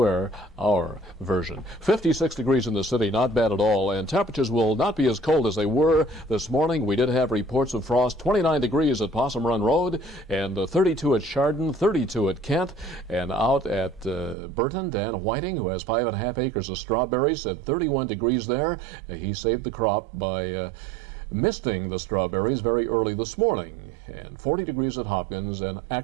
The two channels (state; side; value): drops out; left; at 14.4 s